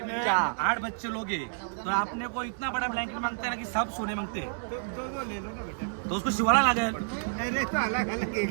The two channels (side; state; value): left; silent; digital silence